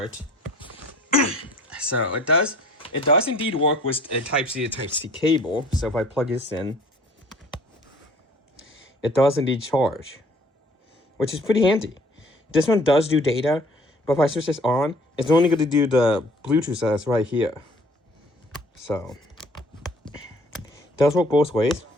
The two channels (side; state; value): both; normal; correlation 0.53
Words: So it does indeed work with a Type-C to Type-C cable. So if I plug this in, it does indeed charge, which is pretty handy. This one does do data, but if I switch this on, it's only going to do the Bluetooth that's right here. So it does work both ways.